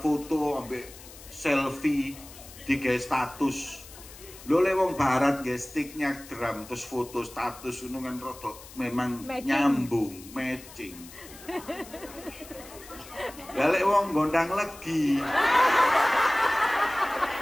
ambek selfie di status. Lo lewong barat nggih sticknya drum terus foto status ngono kan rada memang nyambung, matching. Galek wong gondang legi.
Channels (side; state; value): left; noise; hiss, 18 dB below the sound